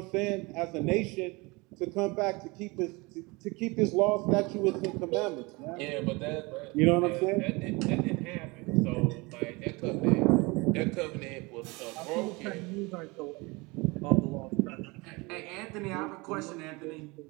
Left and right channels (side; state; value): left; quieter; 25.6 dB